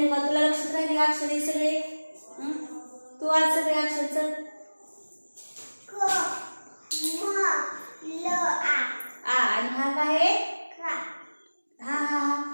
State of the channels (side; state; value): both; inverted; correlation -1.00